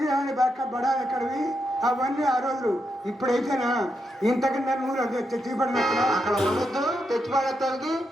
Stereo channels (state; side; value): normal; both; correlation 0.83